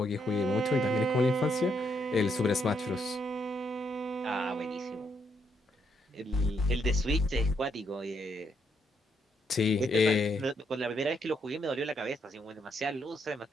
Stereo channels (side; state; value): both; normal; correlation 0.76